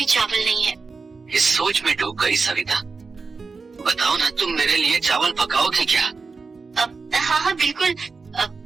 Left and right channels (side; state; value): left; quieter; 4.5 dB